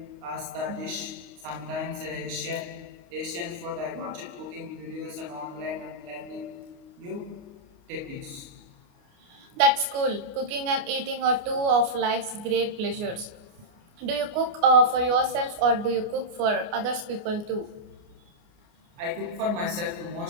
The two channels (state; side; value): late; left; 29 ms